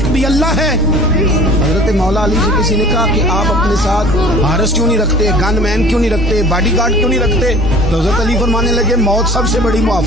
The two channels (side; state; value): both; normal; correlation 0.46